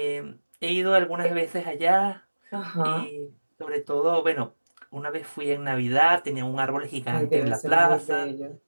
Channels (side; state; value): both; inverted; correlation -1.00